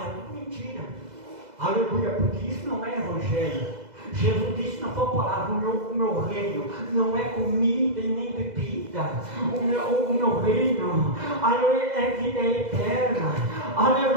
é tudo mentira. Aleluia, porque isso não é evangelho. Jesus disse na sua palavra, o meu reino não é comida e nem bebida. O meu reino, aleluia, é vida eterna.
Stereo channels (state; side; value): late; left; 2.0 ms